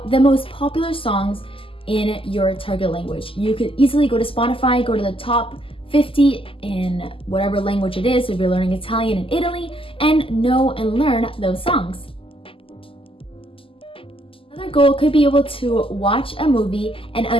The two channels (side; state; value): right; late; 0.26 ms